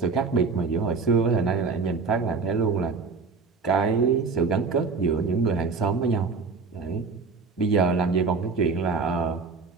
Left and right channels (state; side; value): quieter; left; 4.6 dB